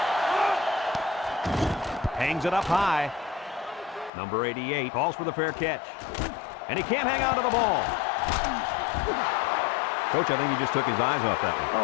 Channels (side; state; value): right; drops out; at 4.1 s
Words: Hangs it up high. Number 88 calls for the fair catch. And he can't hang on to the ball. Coach, I think he just took his eyes off that one.